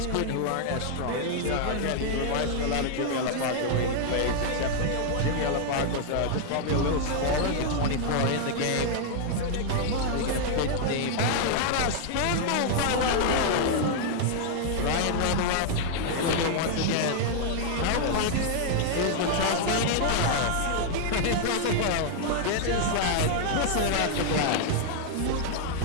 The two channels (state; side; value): different; both; correlation 0.00